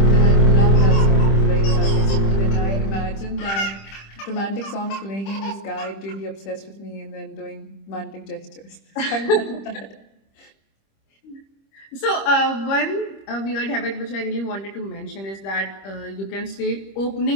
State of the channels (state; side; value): late; right; 25 ms